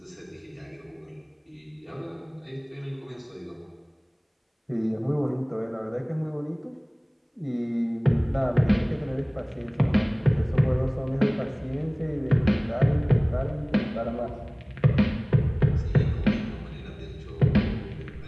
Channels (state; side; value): identical; both; correlation 1.00